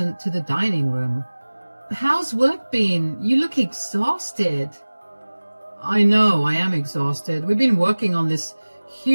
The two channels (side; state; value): both; inverted; correlation -1.00